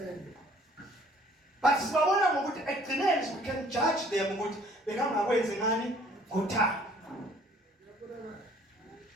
But sibabona ngokuthi ekugcineni we can judge them ukuthi bekangakwenzi ngani ngothando.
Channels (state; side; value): normal; both; correlation 0.57